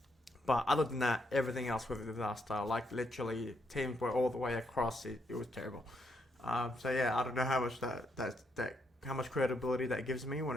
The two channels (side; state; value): both; normal; correlation 0.77